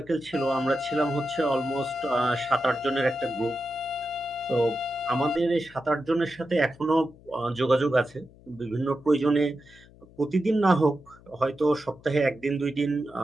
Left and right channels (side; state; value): left; noise; hum, 24 dB below the sound